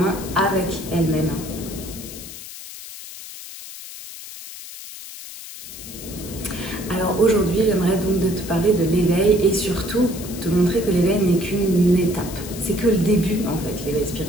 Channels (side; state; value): left; noise; hiss, 13 dB below the sound